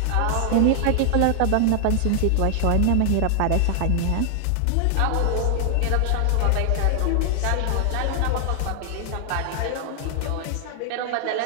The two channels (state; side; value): different; both; correlation 0.00